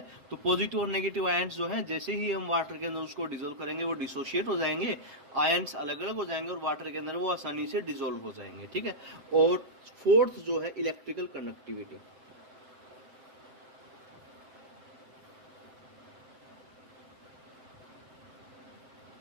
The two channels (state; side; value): late; left; 7.8 ms